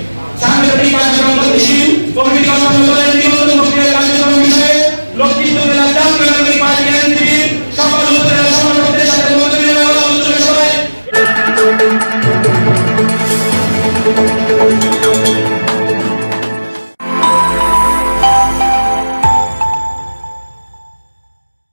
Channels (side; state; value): both; inverted; correlation -1.00